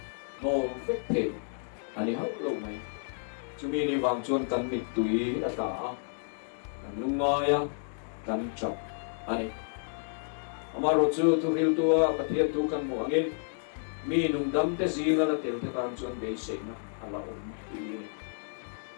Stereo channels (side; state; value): right; silent; digital silence